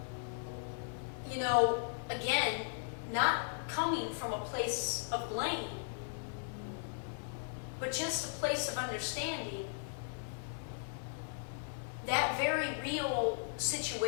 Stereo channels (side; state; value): right; silent; 53 dB below the other